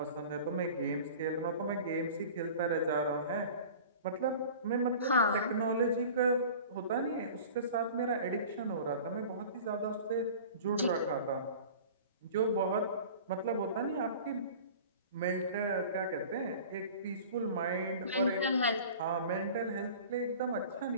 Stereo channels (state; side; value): inverted; both; correlation -0.41